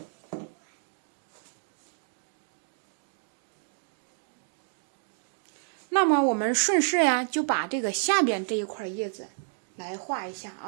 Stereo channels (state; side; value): silent; left; digital silence